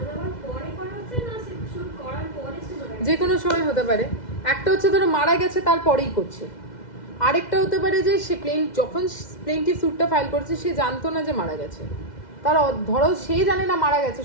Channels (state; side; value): late; right; 2.0 ms